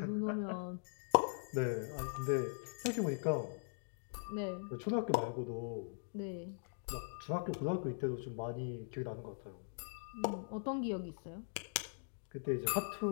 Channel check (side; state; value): right; silent; digital silence